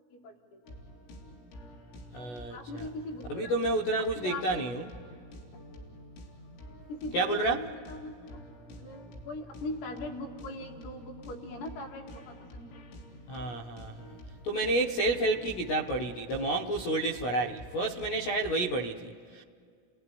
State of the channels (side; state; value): right; late; 16 ms